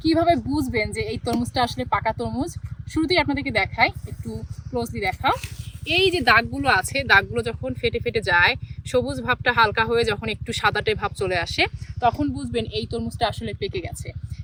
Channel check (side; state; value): both; identical; correlation 1.00